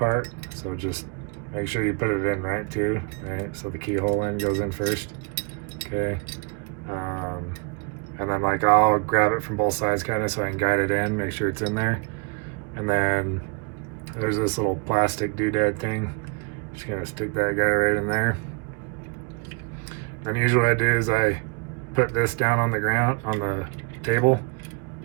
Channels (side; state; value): left; quieter; 32.9 dB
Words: so just make sure you put it in right too, right? So the keyhole end goes in first, okay. And then like I'll grab it from both sides kind of so I can guide it in, make sure it's in there. And then there's this little plastic doodad thing. Just gonna stick that guy right in there. And usually what I do is I put this down on the ground, on the table,